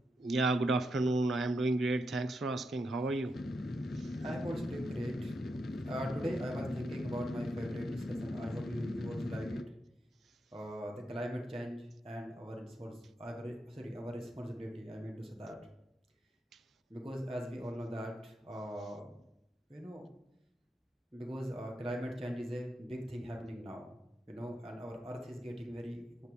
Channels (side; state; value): both; normal; correlation 0.84